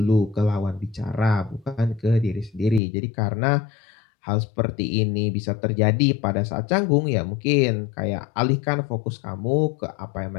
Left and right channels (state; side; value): drops out; right; at 2.8 s